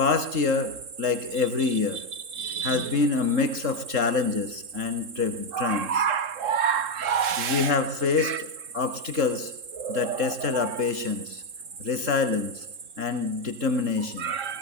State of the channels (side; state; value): left; late; 3.7 ms